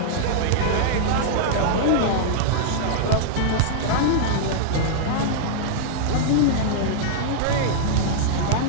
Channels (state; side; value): different; both; correlation -0.01